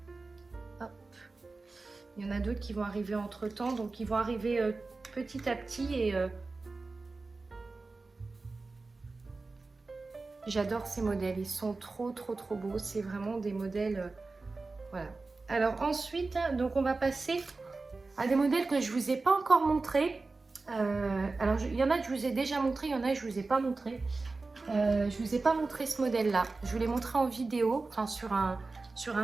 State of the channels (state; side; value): quieter; left; 3.7 dB